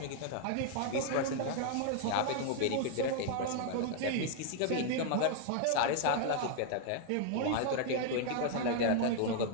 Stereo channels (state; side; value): different; both; correlation 0.00